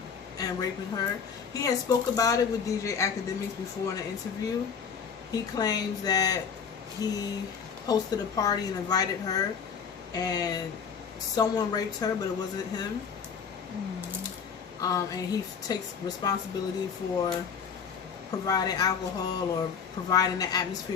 and raping her. He had spoke about it with DJ Academics before in an interview. He claims that he hosted a party and invited her, and someone raped her, but it wasn't him. And he takes responsibility for providing alcohol or providing the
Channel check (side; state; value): right; quieter; 6.6 dB